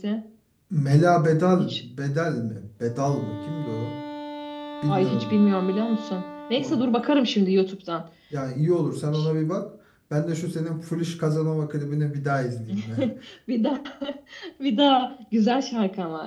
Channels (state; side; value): identical; both; correlation 1.00